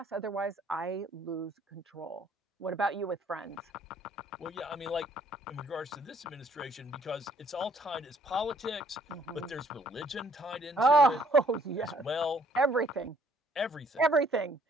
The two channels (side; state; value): both; normal; correlation 0.62